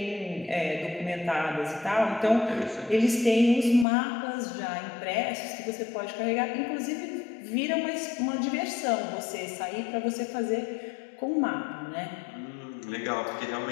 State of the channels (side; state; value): right; drops out; at 3.9 s